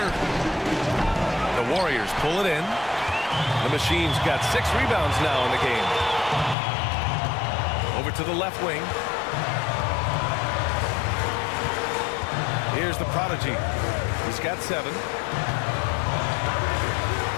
The Warriors pull it in. The Machine's got 6 rebounds now in the game. Over to the left wing. Here's the prodigy. He's got 7.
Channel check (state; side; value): drops out; right; at 6.6 s